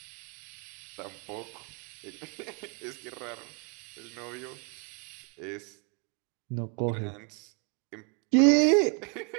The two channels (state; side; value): quieter; left; 38.3 dB